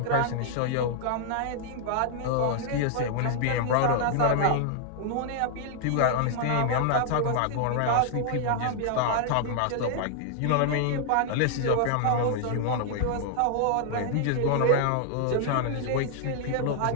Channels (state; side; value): different; both; correlation -0.01